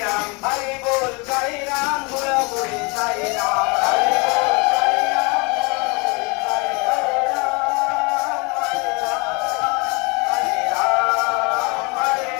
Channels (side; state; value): right; quieter; 29.6 dB